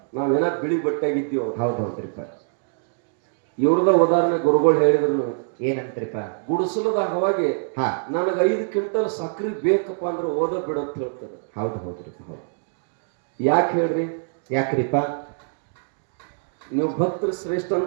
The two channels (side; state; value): left; silent; digital silence